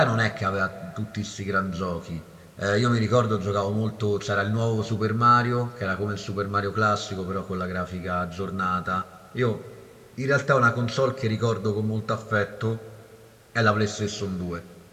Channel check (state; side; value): identical; both; correlation 1.00